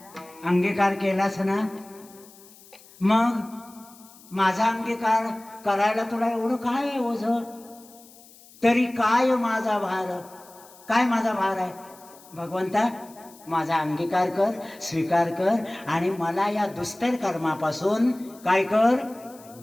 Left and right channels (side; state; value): left; noise; hiss, 23 dB below the sound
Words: अंगीकार केलास ना. मग माझा अंगीकार करायला तुला एवढं काय आहे ओझ? तरी काय माझा भार, काय माझा भार आहे? भगवंता माझा अंगीकार कर, स्वीकार कर. आणि मला या दुस्तर कर्मापासून काय कर,